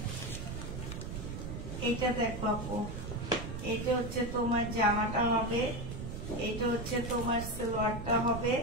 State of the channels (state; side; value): noise; right; rumble, 7 dB below the sound